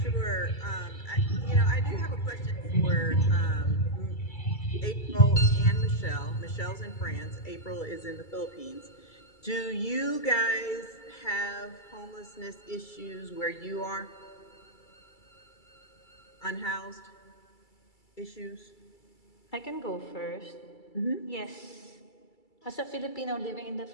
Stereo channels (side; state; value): right; late; 2.3 ms